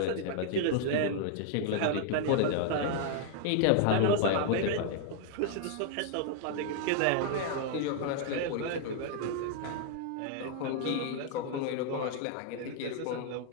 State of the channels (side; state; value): both; different; correlation 0.00